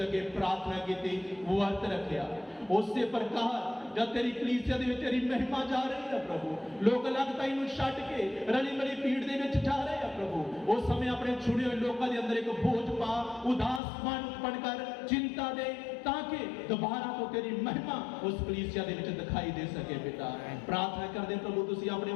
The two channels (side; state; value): right; drops out; at 13.8 s